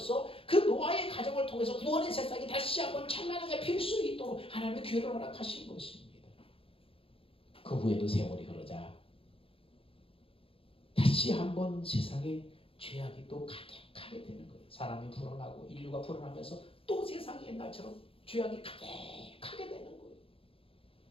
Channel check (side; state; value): right; late; 0.27 ms